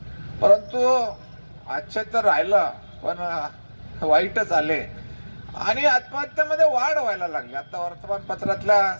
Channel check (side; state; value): both; inverted; correlation -1.00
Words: परंतु आजचे तर राहिलं पण वाईटच आले आणि आत्महत्येमध्ये वाढ व्हायला लागली. आता वर्तमानपत्रातल्या